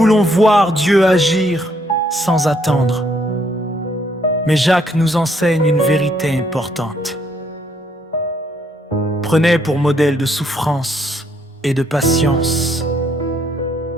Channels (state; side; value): normal; both; correlation 0.70